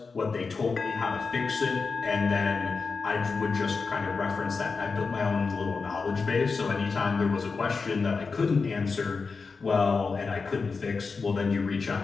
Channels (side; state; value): right; quieter; 4.7 dB